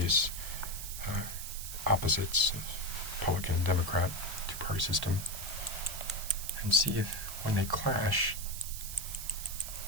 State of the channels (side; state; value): right; noise; hiss, 8 dB below the sound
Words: opposites of Republican and Democrat two-party system and see if, when they clash,